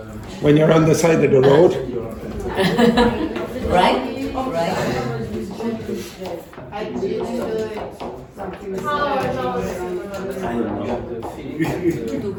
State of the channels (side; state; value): both; identical; correlation 1.00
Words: When you're on the side of the road. right?